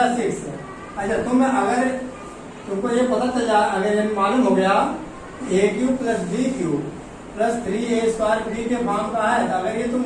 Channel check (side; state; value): both; identical; correlation 1.00